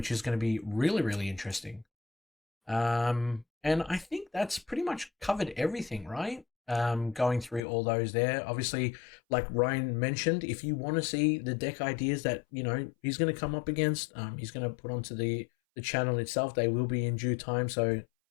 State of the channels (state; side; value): drops out; right; at 7.6 s